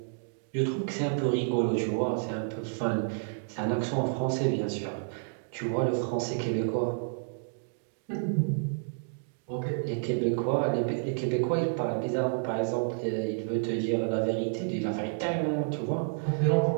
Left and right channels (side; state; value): left; silent; digital silence